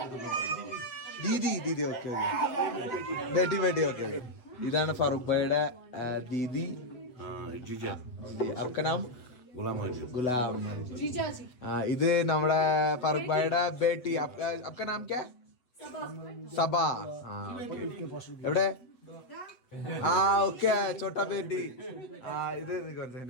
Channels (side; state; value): right; late; 8.1 ms